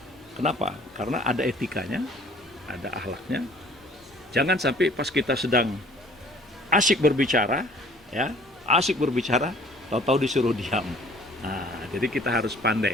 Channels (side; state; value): both; normal; correlation 0.53